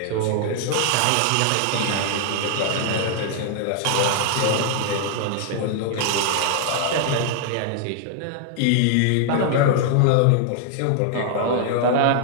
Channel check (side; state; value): both; different; correlation 0.00